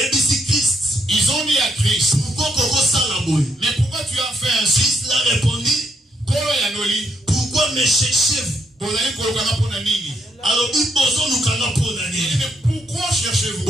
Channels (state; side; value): normal; both; correlation 0.76